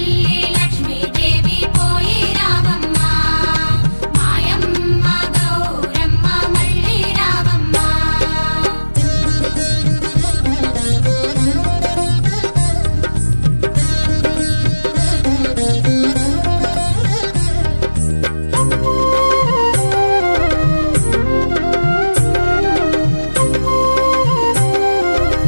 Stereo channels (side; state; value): both; inverted; correlation -1.00